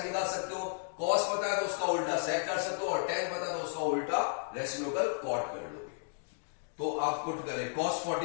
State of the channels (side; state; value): right; silent; digital silence